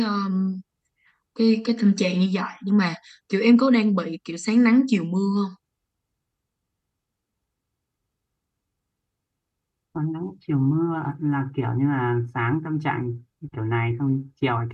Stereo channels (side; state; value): both; identical; correlation 1.00